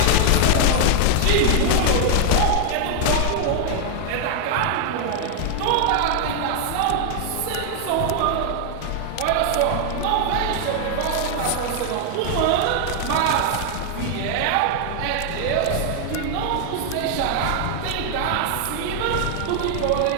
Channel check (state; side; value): different; both; correlation 0.00